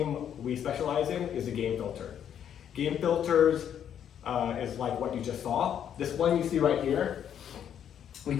we specialize in is the game filter. Game filters is like what you just saw. This one you see right here, we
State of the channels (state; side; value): quieter; right; 9.3 dB